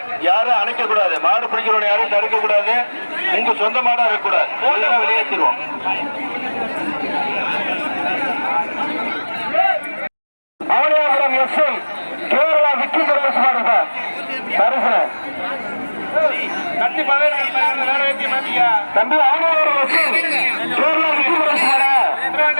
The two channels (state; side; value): inverted; both; correlation -1.00